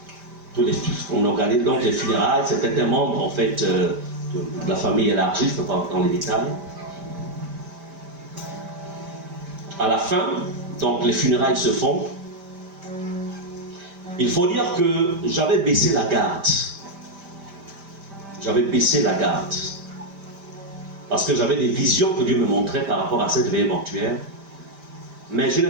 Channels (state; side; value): late; left; 5.1 ms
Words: On organise donc les funérailles, c'était un membre en fait de la famille élargie, je ne peux pas entrer dans les détails. À la fin, donc les funérailles se font. Il faut dire que j'avais baissé la garde. J'avais baissé la garde. Parce que j'avais des visions que Dieu me montrait par rapport à cette veillée mortuaire. Mais je n'ai